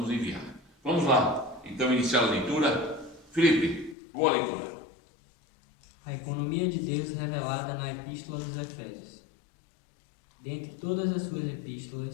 enviar. Vamos lá, então, iniciar a leitura. Felipe, boa leitura. A economia de Deus revelada na Epístola dos Efésios. Dentre todas as suas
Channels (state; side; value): drops out; right; at 4.0 s